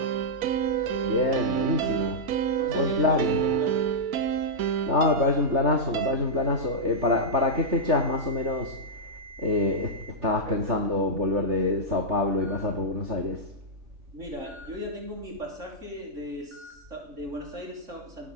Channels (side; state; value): left; late; 3.3 ms